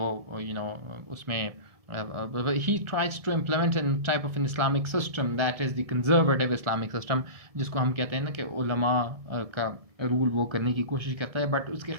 उसमें he tries to implement a type of an Islamic system that is the conservative Islamic system, जिसको हम कहते हैं ना कि उलमा का रूल वो करने की कोशिश करता है, बट उसके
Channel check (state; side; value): late; left; 1.7 ms